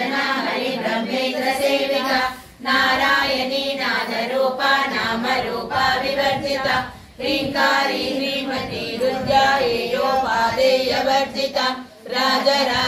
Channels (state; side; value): identical; both; correlation 1.00